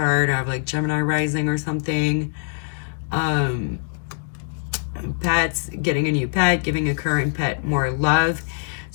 or have like Gemini rising or something. Pets, getting a new pet, giving a current pet more love.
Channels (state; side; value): silent; right; 59 dB below the other